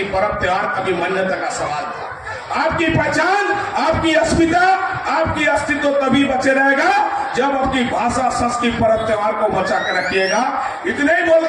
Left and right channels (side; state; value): both; identical; correlation 1.00